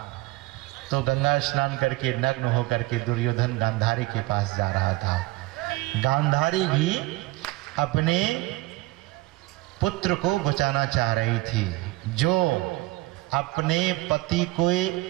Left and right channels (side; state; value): left; quieter; 20.0 dB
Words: तो गंगा स्नान करके नग्न होकर के दुर्योधन गांधारी के पास जा रहा था। गांधारी भी अपने पुत्र को बचाना चाह रही थी, जो अपने पति को,